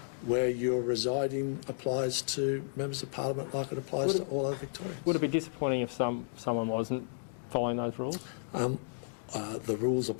where you're residing applies to members of Parliament like it applies to all other Victorians. Would it be disappointing if someone wasn't following those rules? The rules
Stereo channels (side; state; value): right; silent; digital silence